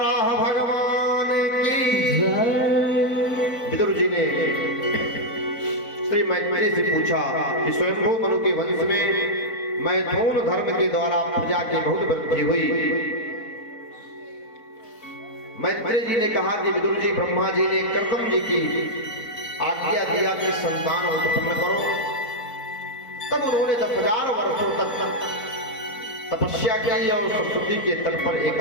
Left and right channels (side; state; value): right; late; 4.0 ms